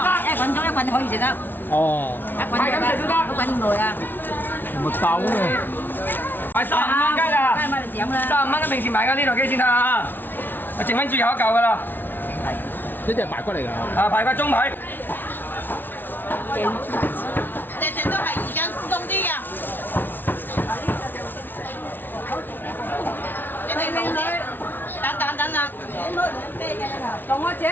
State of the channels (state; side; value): late; right; 0.094 ms